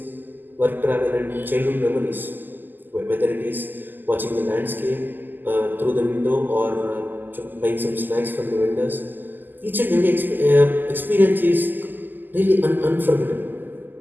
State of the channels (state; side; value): late; left; 0.089 ms